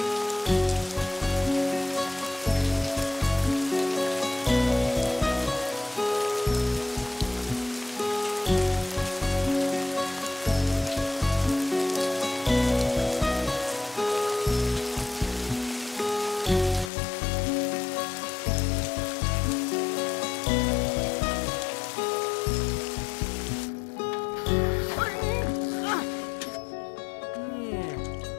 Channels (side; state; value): right; drops out; at 16.9 s